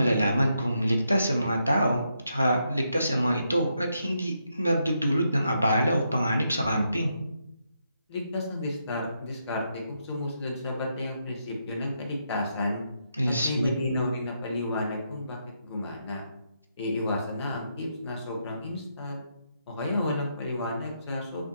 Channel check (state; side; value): inverted; both; correlation -0.80